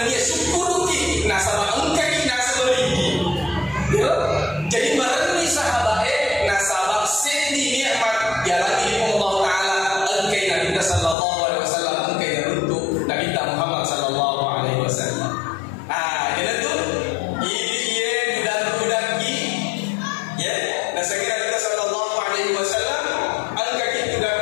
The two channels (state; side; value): drops out; right; at 11.2 s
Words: dia syukuruki nasabah engkau jadi merenungi sahabat nasabah sendi nikmat jalan ilmu Allah Taala engkai Nabi sallallahu alaihi wasallam engkai untuk Nabi Muhammad sallallahu alaihi wasallam. Jadi tu ini budak gi ya dan sekira kita sallallahu alaihi wasallam engkai